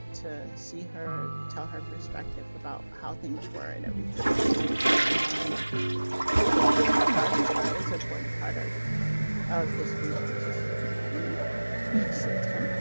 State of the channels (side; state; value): both; inverted; correlation -1.00